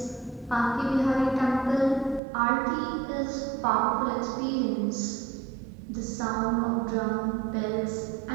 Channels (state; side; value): drops out; left; at 2.2 s